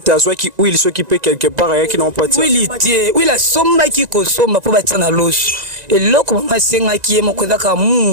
azwaki huile soki pe quelque part yaki na mpati huile tie huile somba ki ko somba po batia na loso eloko mama singa ki ye moko zaka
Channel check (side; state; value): left; late; 1.9 ms